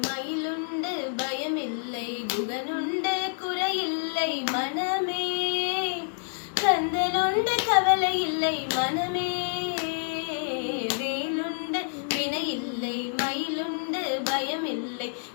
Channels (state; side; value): silent; right; digital silence